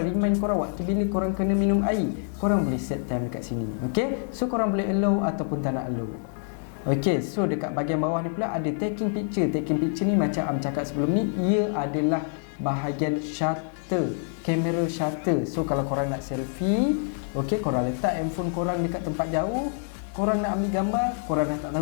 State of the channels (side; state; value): right; silent; 60 dB below the other